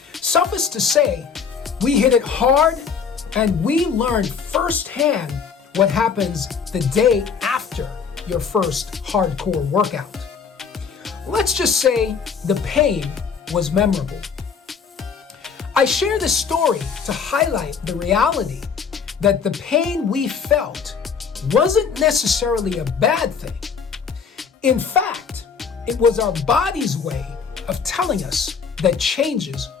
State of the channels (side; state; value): right; quieter; 6.1 dB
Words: Suffice to say, we hit it hard and we learned firsthand what happens the day after your first hardcore workout. Let's just say the pain was memorable. I share this story to highlight the reality that the pain we felt wasn't necessarily a bad thing. In fact, it was our body's way of telling us that changes